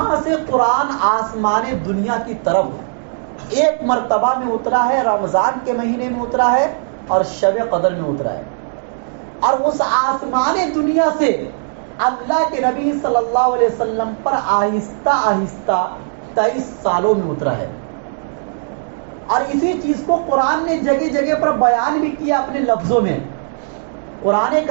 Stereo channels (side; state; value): left; silent; digital silence